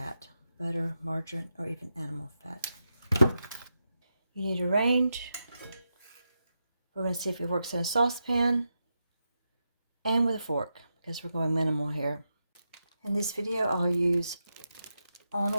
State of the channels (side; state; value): both; inverted; correlation -0.87